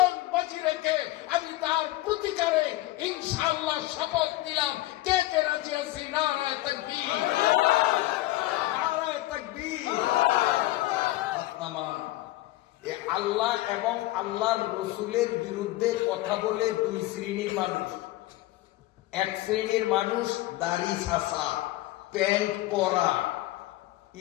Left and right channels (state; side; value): quieter; right; 17.2 dB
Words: বাজি রেখে আমি তার প্রতিকারে ইনশাআল্লাহ শপথ নিলাম। কে কে রাজি আছি? নারায়ে তাকবীর, নারায়ে তাকবীর। আল্লাহ এবং আল্লাহর রসুলের বিরুদ্ধে কথা বলে দুই শ্রেণীর মানুষ। এক শ্রেণীর মানুষ দাড়ি ছাঁচা, প্যান্ট পরা,